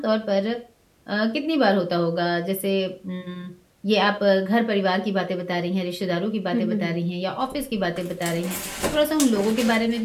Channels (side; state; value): both; identical; correlation 1.00